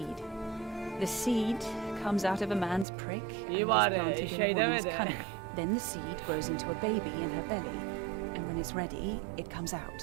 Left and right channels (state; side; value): drops out; left; at 2.9 s